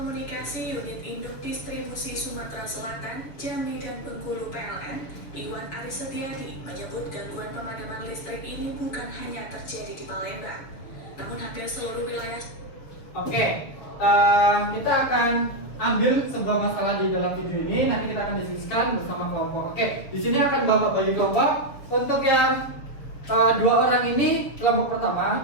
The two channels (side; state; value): right; late; 6.9 ms